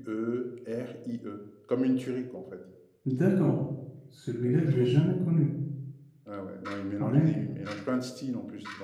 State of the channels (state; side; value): identical; both; correlation 1.00